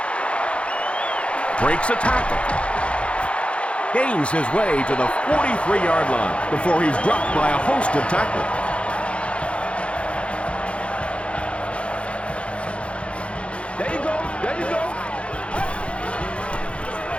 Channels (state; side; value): late; right; 0.060 ms